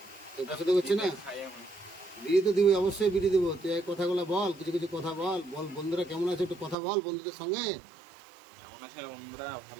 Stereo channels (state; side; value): drops out; left; at 6.8 s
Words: কেউ পছন্দ করছে না? খাই আমি। বিড়ি তো দিবি, অবশ্যই বিড়ি দেবো। তুই এই কথাগুলো বল, কিছু কিছু কথা বল। বল বন্ধুরা কেমন আছে একটু কথা বল বন্ধুদের সঙ্গে। কেমন আছে বন্ধুরা?